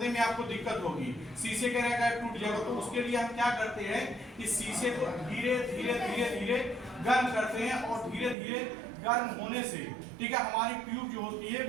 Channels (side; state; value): left; drops out; at 8.3 s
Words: में आपको दिक्कत होगी, शीशे के रहेगा टूट जाएगा। तो उसके लिए हम क्या करते हैं, इस शीशे को धीरे धीरे गर्म करते हैं और धीरे धीरे गर्म होने से, ठीक है, हमारी ट्यूब जो होती